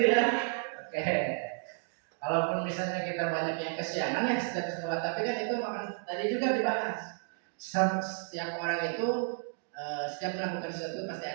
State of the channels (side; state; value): left; silent; 56 dB below the other